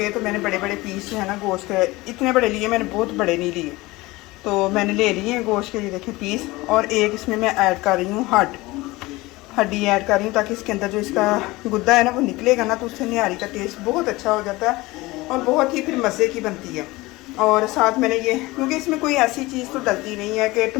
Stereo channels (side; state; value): right; quieter; 20.8 dB